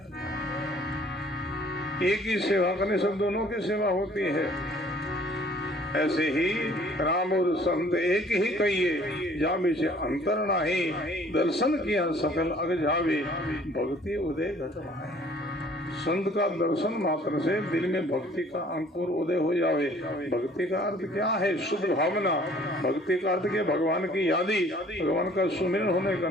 एक ही सेवा करने से दोनों की सेवा होती है। ऐसे ही राम और संत एक ही कहिए, जामे से अंतर नाही, दर्शन किया सकल अग जावे, भक्ति उदय घट भाई। संत का दर्शन मात्र से दिल में भक्ति का अंकुर उदय हो जावे। भक्ति का अर्थ क्या है? शुद्ध भावना। भक्ति का अर्थ क्या? भगवान की यादी, भगवान का सुमिरन होने का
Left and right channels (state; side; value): normal; both; correlation 0.55